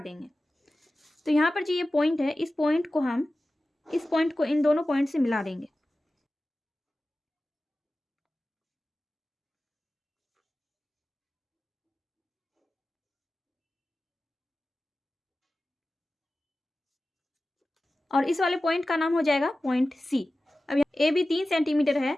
देंगे। तो यहाँ पर जो ये पॉइंट है, इस पॉइंट को इन दोनों पॉइंट से मिला देंगे। और इस वाले पॉइंट का नाम हो जाएगा पॉइंट C। अब यहाँ AB 3 सेंटीमीटर है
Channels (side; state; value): both; normal; correlation 0.95